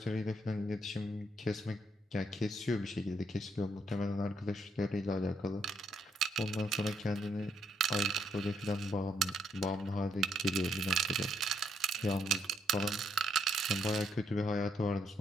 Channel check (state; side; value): normal; both; correlation 0.73